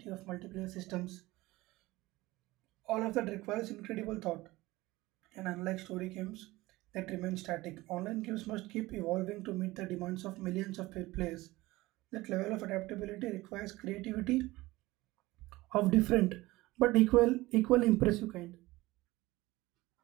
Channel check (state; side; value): quieter; left; 19.4 dB